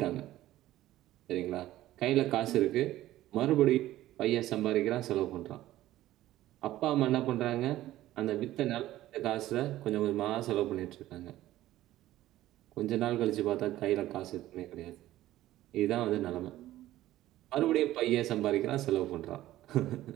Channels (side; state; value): left; quieter; 14.8 dB